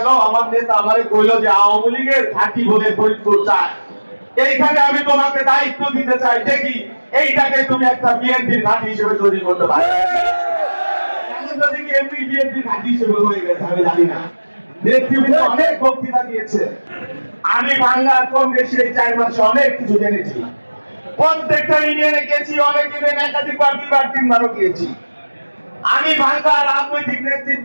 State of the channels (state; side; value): inverted; both; correlation -1.00